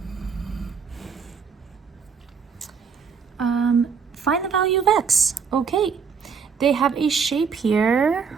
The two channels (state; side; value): quieter; left; 6.1 dB